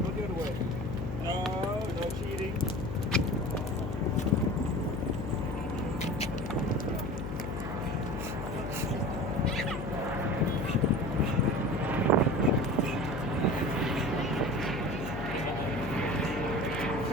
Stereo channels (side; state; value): left; noise; hum, 5 dB below the sound